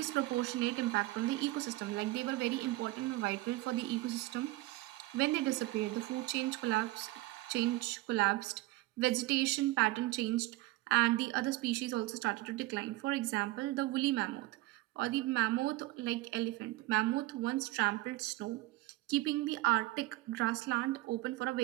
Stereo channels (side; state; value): left; quieter; 19.0 dB